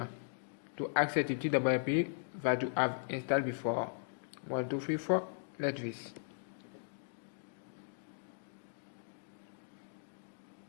to access the TWIP that you have installed before. 1, 2, 3, 4, like this.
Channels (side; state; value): right; silent; digital silence